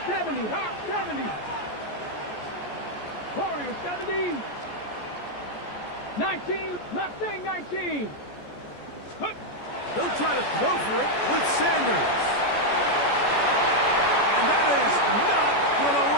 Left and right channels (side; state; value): right; late; 14 ms